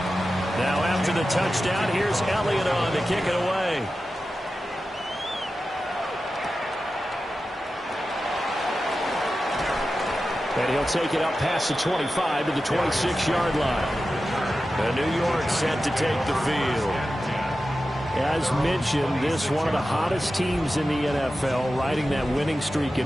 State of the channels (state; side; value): normal; both; correlation 0.93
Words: Now after the touchdown, here's Elliott on to kick it away. And he'll take it up past the 25 to the 26-yard line. And New York set to take the field. As mentioned, this one of the hottest teams in the NFL, riding that winning streak